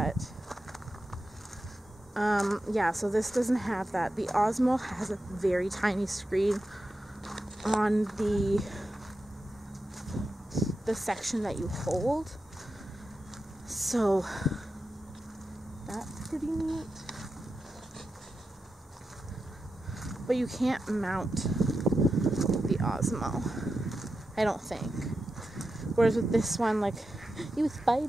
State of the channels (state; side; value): normal; both; correlation 0.90